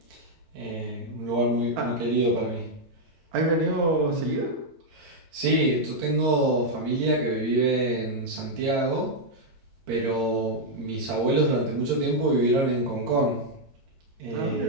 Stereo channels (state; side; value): late; left; 8.8 ms